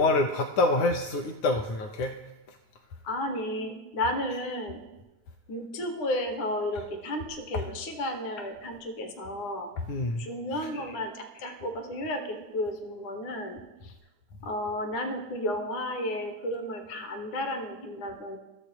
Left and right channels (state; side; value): late; right; 9.7 ms